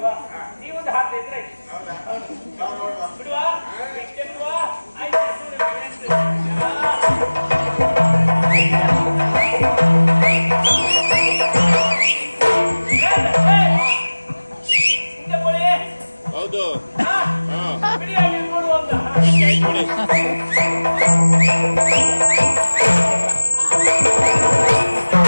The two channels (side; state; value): both; inverted; correlation -1.00